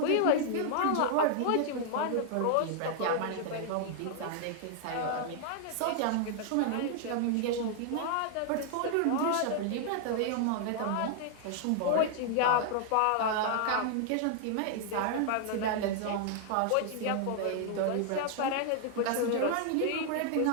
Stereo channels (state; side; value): different; both; correlation 0.00